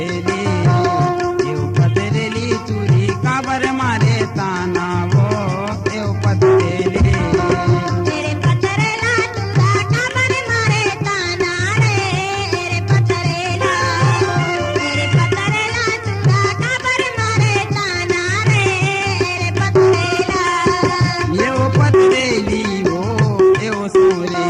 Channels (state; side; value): identical; both; correlation 1.00